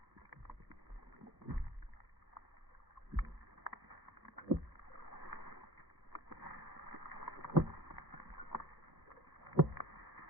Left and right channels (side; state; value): both; normal; correlation 0.42